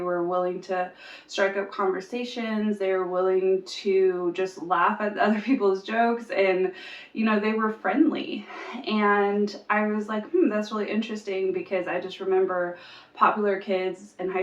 willing to strike up conversations, they were willing to just laugh at other people's jokes, and they were friendly. And I was like, that's really interesting, because I just remember popular kids in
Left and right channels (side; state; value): both; identical; correlation 1.00